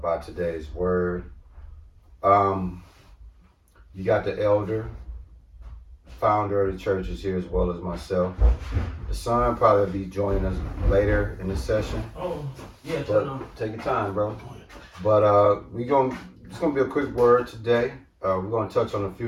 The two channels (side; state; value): both; identical; correlation 1.00